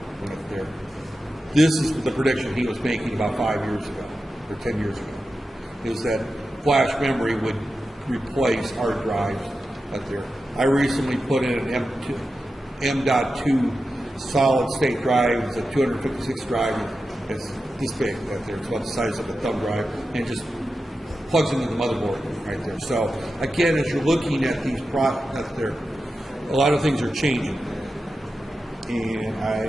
Right there. This is the prediction he was making about 5 years ago, or 10 years ago, is that flash memory would replace hard drives out there. I recently put in an M.2 solid state drive. It's a 256 drive. It's this big out there. It's about the size of a thumb drive, and it just plugs into the motherboard right there. So again, as you're looking at these products there, a lot of things are changing. And I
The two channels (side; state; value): both; normal; correlation 0.91